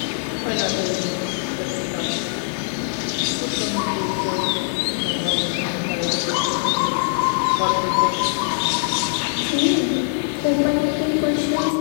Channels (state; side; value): silent; right; digital silence